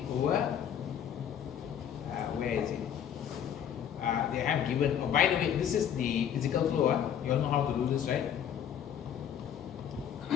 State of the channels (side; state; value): right; quieter; 9.1 dB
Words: over, where is it? They have given, oh, by the way, this is the physical flow. You all know how to do this, right?